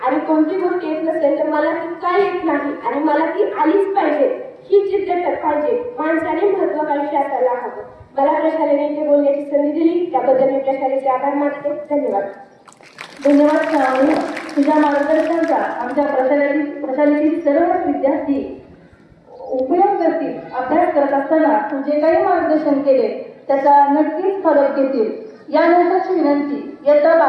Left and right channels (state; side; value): identical; both; correlation 1.00